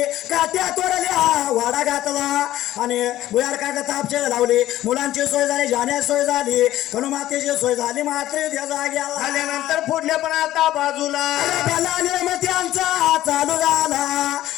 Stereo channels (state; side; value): quieter; right; 14.2 dB